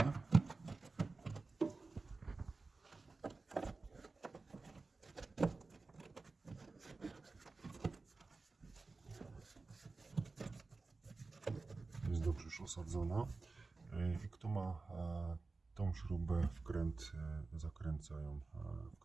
Jest dobrze już osadzona. I kto ma tą śrubę, wkręcają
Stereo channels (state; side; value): quieter; left; 3.8 dB